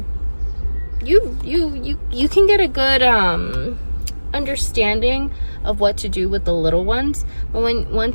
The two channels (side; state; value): both; inverted; correlation -1.00